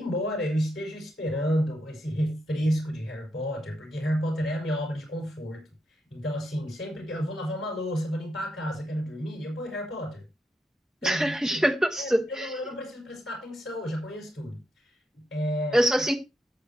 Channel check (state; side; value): normal; both; correlation 0.83